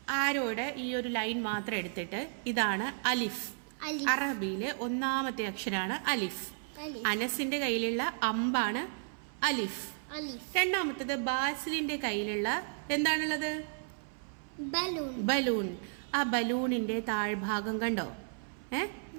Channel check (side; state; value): left; silent; 55 dB below the other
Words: ആരോയുടെ ഈ ഒരു ലൈൻ മാത്രം എടുത്തിട്ട് ഇതാണ് അലിഫ്. അറബിയിലെ ഒന്നാമത്തെ അക്ഷരാണ് അലിഫ്. അനസിന്റെ കയ്യിലുള്ള അമ്പാണ് അലിഫ്. രണ്ടാമത്തത് ബാസിലിന്റെ കയ്യിലുള്ള എന്താണുള്ളത്? ബലൂൺ. ആ ബലൂണിന്റെ താഴ്ഭാഗം കണ്ടോ?